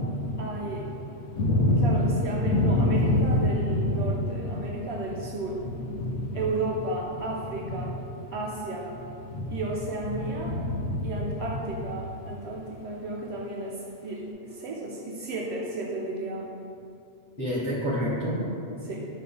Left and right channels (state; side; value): late; right; 8.3 ms